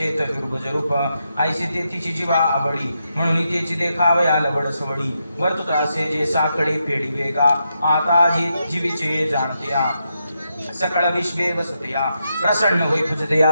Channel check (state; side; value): inverted; both; correlation -0.83